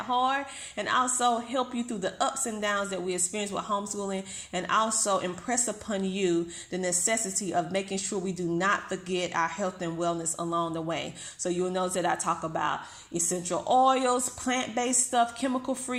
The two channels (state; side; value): identical; both; correlation 1.00